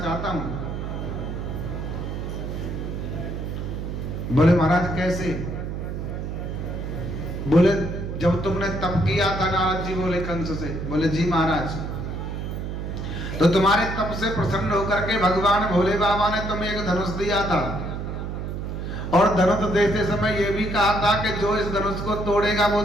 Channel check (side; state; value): right; noise; hum, 5 dB below the sound